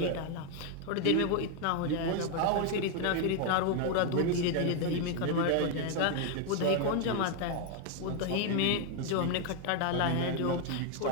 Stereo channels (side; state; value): both; different; correlation 0.01